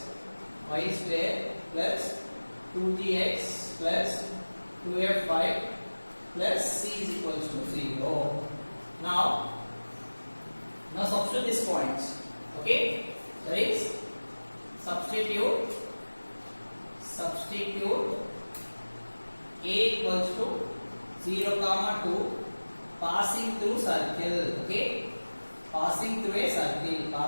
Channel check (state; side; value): inverted; both; correlation -1.00